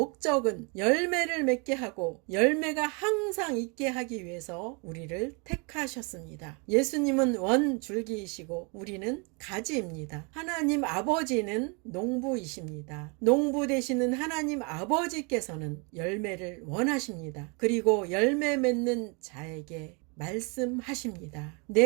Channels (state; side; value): quieter; left; 32.8 dB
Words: 열매를 맺게 하고 열매가 항상 있게 하기 위해서 우리를 택하셨습니다. 예수님은 원줄기이시고 우리는 가지입니다. 하나님 아버지는 농부이십니다. 농부 되시는 하나님 아버지께서는 열매를 원하십니다. 그리고 열매 맺는 자에게 말씀하십니다.